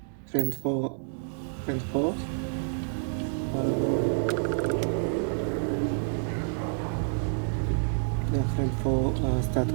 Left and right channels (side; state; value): left; silent; digital silence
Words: friend 4. The friend 4